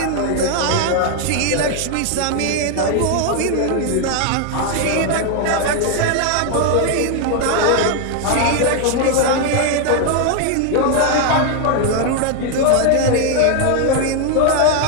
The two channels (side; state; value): both; different; correlation 0.00